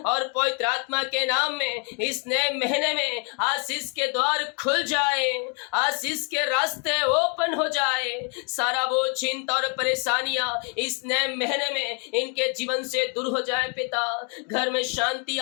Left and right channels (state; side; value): quieter; right; 38.0 dB